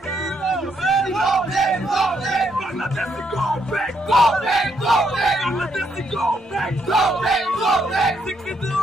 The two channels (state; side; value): normal; both; correlation 0.75